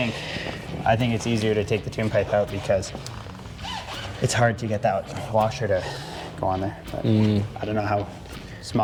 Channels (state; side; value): identical; both; correlation 1.00